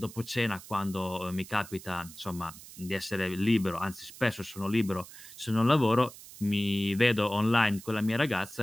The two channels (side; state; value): right; noise; hiss, 17 dB below the sound